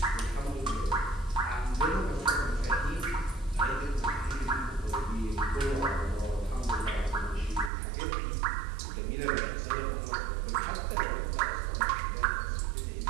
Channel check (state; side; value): drops out; left; at 7.7 s